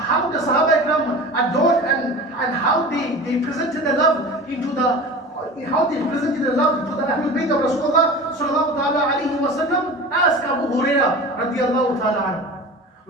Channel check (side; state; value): both; normal; correlation 0.35